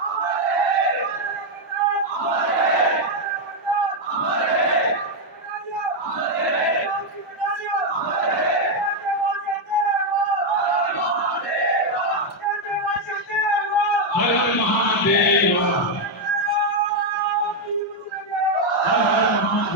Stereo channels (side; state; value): both; normal; correlation 0.02